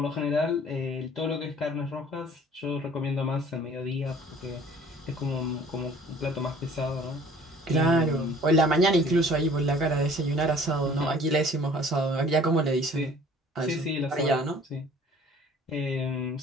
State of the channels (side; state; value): both; normal; correlation 0.51